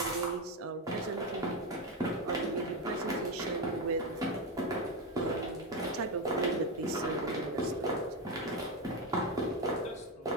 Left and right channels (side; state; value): both; normal; correlation 0.11